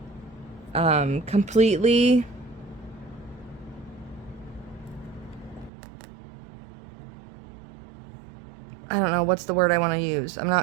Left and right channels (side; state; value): left; drops out; at 5.7 s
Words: completely, I don't know what's the word I want to use. I'm